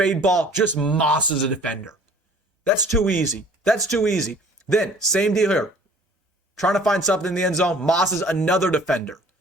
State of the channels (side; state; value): both; normal; correlation 0.51